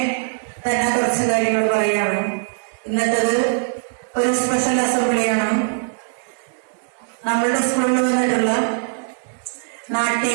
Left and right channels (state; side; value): silent; left; 64 dB below the other